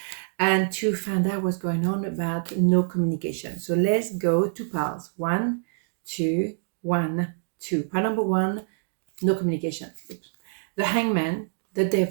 and to find out what's going on about no communication. So let's go two piles. 1, 2, 1, 2. Pile number 1, no communication. Oops. The Hangman, the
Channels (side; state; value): left; silent; digital silence